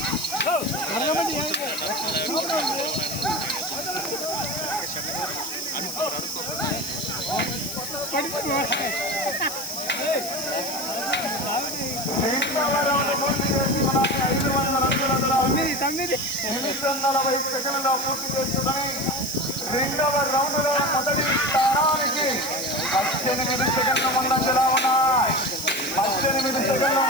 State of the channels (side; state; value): left; noise; hiss, 9 dB below the sound